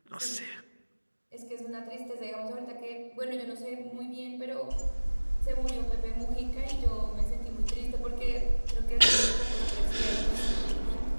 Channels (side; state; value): both; inverted; correlation -1.00